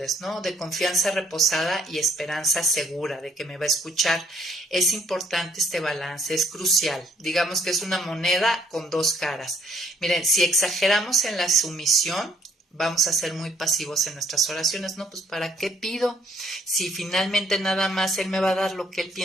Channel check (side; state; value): both; normal; correlation 0.64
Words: ¿no? De confianza reposada y esperanza segura de que me va a escuchar. Es importante este balance, es crucial. Digamos que es una moneda con 2 caras. Miren, si exageramos en la sumisión, vamos a ser muy pasivos en nuestras oraciones, ¿no? Pues ¿para qué pido? Si finalmente nada más Él me va a dar lo que Él